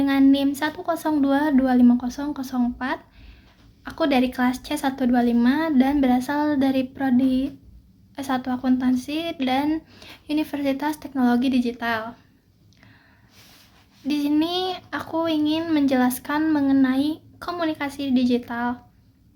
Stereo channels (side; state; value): both; identical; correlation 1.00